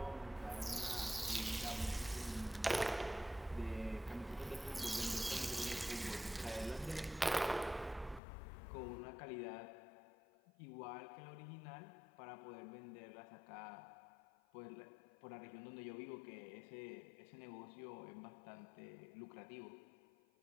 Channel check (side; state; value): right; drops out; at 8.2 s